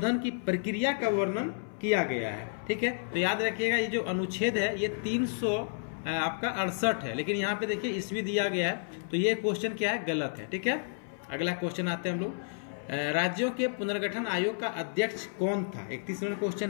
की प्रक्रिया का वर्णन किया गया है? ठीक है। तो याद रखिएगा ये जो अनुच्छेद है ये 300 आपका 68 है, लेकिन यहाँ पे देखिए ईस्वी दिया गया है, तो ये क्वेश्चन क्या है? गलत है। ठीक है। अगला क्वेश्चन आते हैं हम लोग राज्यों के पुनर्गठन आयोग का अध्यक्ष कौन था? 31 नंबर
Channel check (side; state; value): right; silent; 57 dB below the other